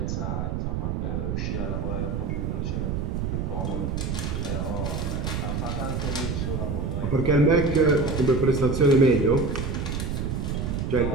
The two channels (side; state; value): right; noise; rumble, 1 dB below the sound